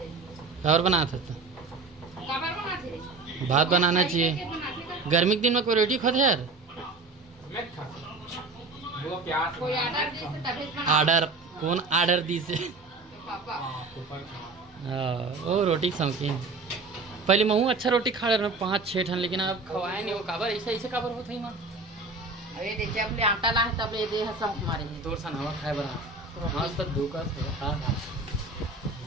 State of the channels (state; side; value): quieter; left; 3.6 dB